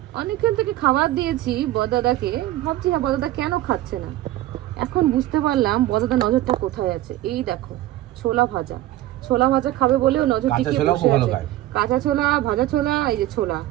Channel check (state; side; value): quieter; left; 15.1 dB